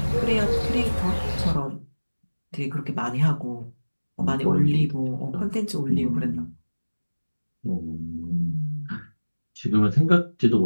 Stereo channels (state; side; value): inverted; both; correlation -1.00